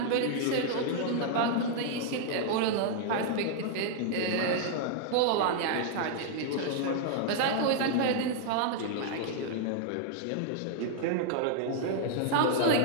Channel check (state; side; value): different; both; correlation -0.01